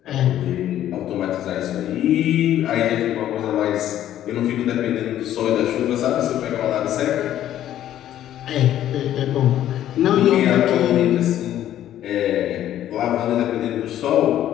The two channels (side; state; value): right; quieter; 12.0 dB